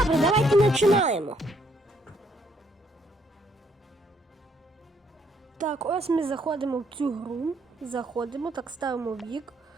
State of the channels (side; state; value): both; normal; correlation 0.70